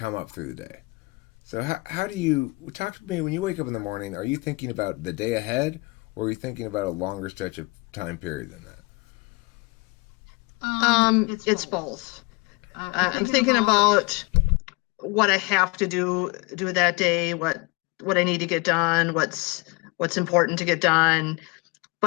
up through the day. So how do you talk to me when you wake up in the morning? Are you thinking about the day ahead, or are you thinking about a longer stretch of time period than that? It's both. I'm thinking about what I have to do that day, what I need to get done, what's important to get done.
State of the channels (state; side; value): quieter; right; 26.9 dB